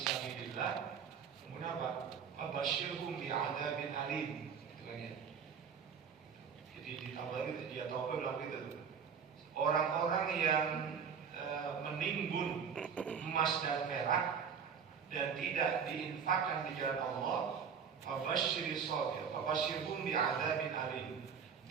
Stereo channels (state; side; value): quieter; left; 6.8 dB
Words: Kemudian apa? Fabasyirhum bi'adzabin alim. Itu kan ya. Jadi di Tabari dia tahu bilang gitu. Orang-orang yang menimbun emas dan perak dan tidak diinfakkan di jalan Allah, fabasyirhum bi'adzabin alim.